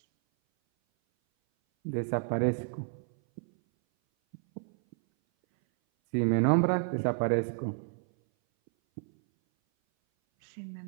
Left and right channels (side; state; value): left; silent; 58 dB below the other